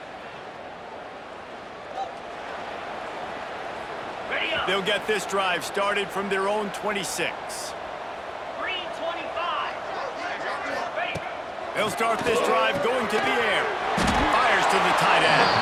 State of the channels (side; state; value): both; identical; correlation 1.00